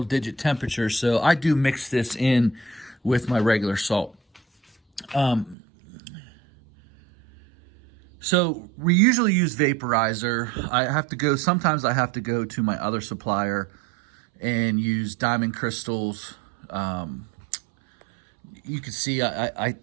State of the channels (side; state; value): left; drops out; at 5.6 s